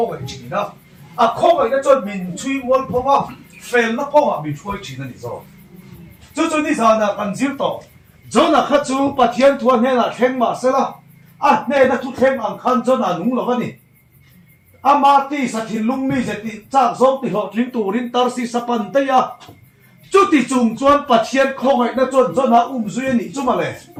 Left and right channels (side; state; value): both; identical; correlation 1.00